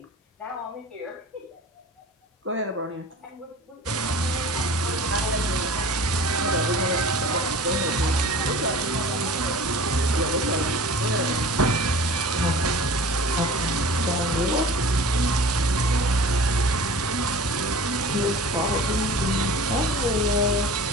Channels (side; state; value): both; normal; correlation 0.41